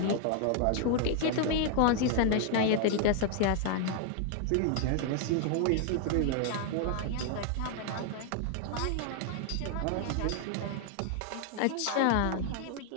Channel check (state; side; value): different; both; correlation 0.00